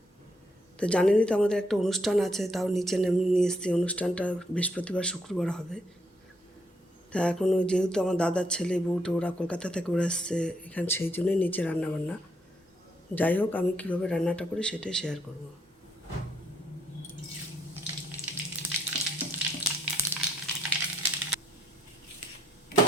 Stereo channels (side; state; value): both; normal; correlation 0.71